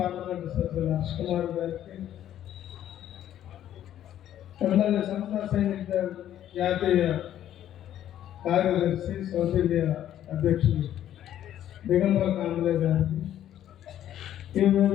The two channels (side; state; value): right; quieter; 11.4 dB